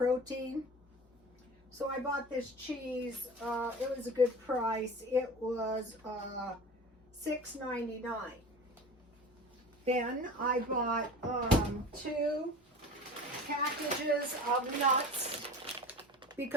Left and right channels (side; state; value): both; normal; correlation 0.36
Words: So I bought this cheese. It was a good price. It was $6.99. Then I bought 2 packages of nuts